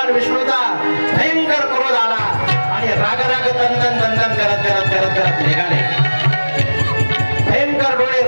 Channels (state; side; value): inverted; both; correlation -1.00